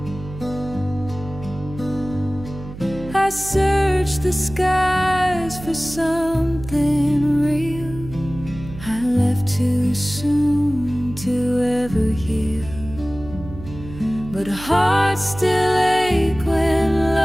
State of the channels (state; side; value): noise; right; hum, 13 dB below the sound